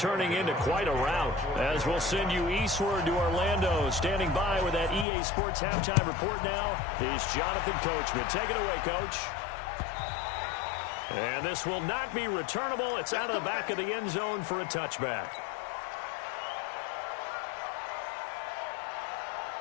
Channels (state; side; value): drops out; right; at 5.1 s